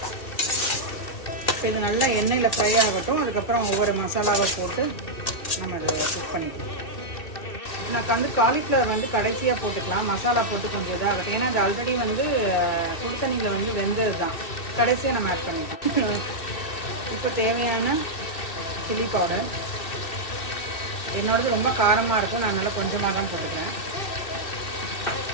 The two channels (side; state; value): right; late; 2.7 ms